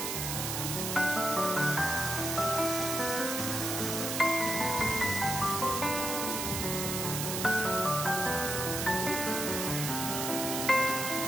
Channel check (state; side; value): noise; right; hiss, 2 dB below the sound